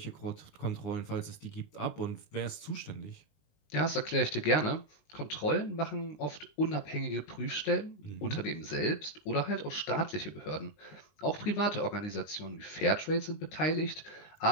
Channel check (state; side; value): late; right; 19 ms